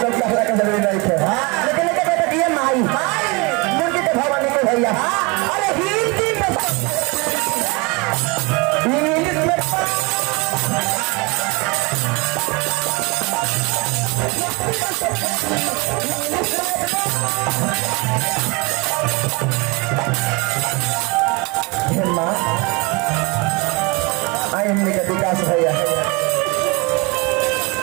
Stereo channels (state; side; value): quieter; left; 27.8 dB